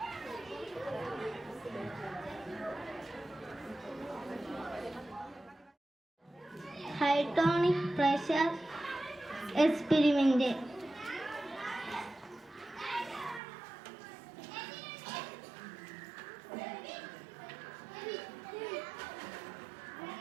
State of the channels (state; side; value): drops out; left; at 13.4 s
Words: Hydronic pressure experiment.